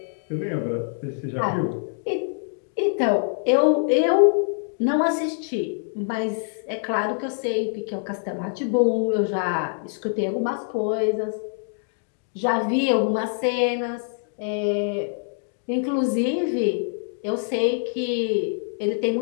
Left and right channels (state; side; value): silent; right; digital silence